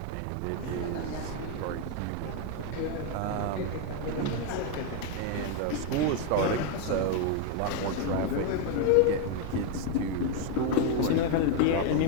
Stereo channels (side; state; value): both; different; correlation 0.01